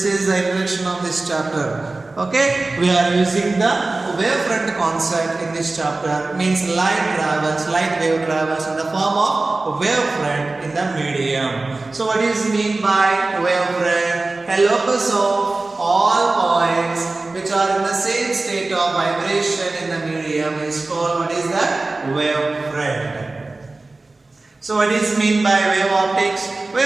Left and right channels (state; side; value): quieter; left; 3.3 dB